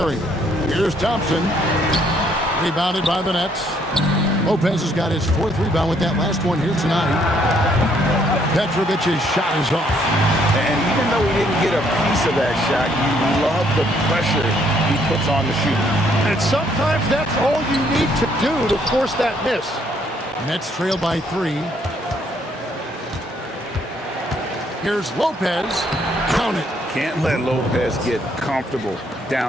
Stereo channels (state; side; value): normal; both; correlation 0.68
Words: Here's Thompson. Rebounded by the Nets. Lopez has got his 4th rebound with that last one here tonight. Petrovic's shot is off. And even though he didn't get a piece of that shot, you love the pressure he puts on the shooter. And sometimes that's all you need to do to force that miss. Nets trail by 3. Here's Lopez. Count it. Can't let Lopez get comfortable